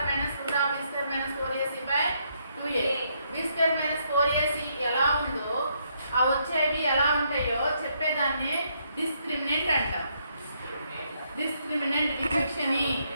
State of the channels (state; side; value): inverted; both; correlation -0.74